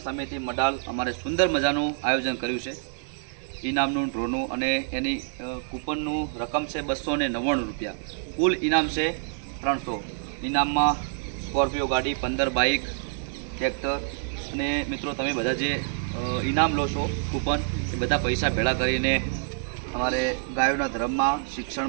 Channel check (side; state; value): left; silent; 58 dB below the other